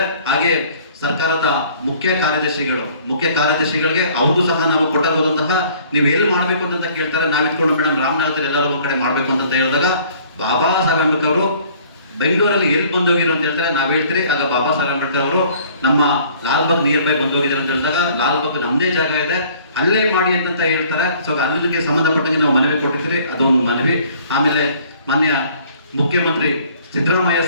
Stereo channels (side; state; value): both; inverted; correlation -0.55